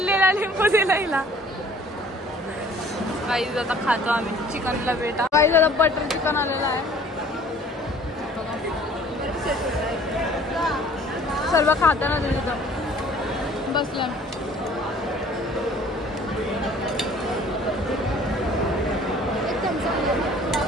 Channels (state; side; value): normal; both; correlation 0.53